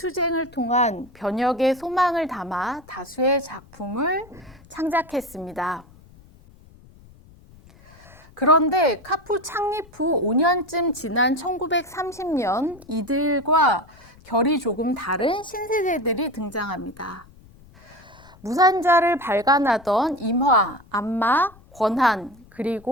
통한 변혁의 소망을 담아 다수의 작품을 창작했습니다. 그런데 카푸 창립 후 5년쯤 지난 1930년 이들과 결이 조금 다른 신세대들이 등장합니다. 무산자를 발간하던 임화, 안마, 권한,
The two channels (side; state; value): left; noise; rumble, 25 dB below the sound